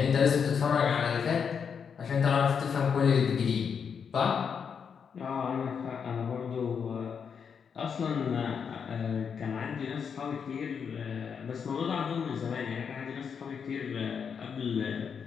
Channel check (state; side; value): quieter; right; 6.7 dB